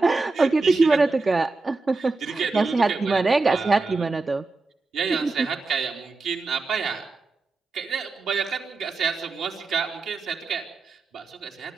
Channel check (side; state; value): left; quieter; 3.7 dB